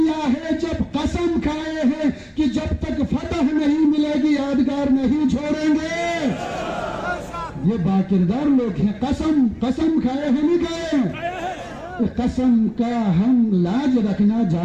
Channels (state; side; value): identical; both; correlation 1.00